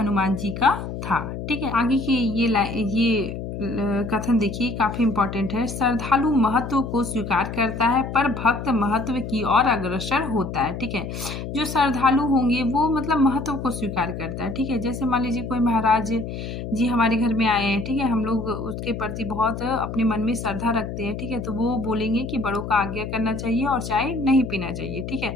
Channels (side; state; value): left; noise; hum, 7 dB below the sound